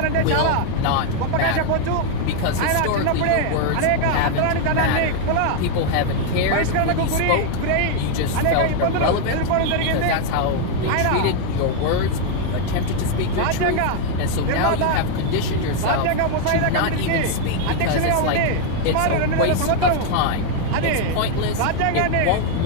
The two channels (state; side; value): different; both; correlation 0.00